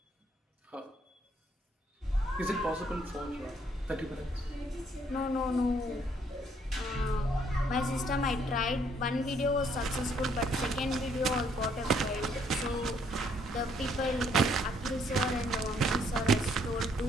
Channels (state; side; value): normal; both; correlation 0.68